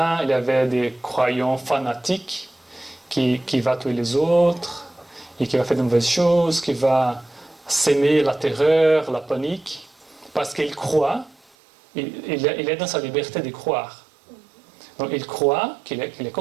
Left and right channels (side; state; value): left; drops out; at 11.4 s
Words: il y avait des croyants fanatiques qui vont tuer les autres et qui va faire de mauvaises choses, qui va s'aimer la terreur, la panique, parce qu'il croit, il est dans sa liberté de croire. Donc il croit qu'il est